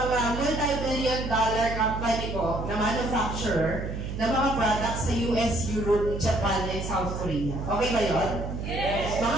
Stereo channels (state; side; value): noise; right; hum, 5 dB below the sound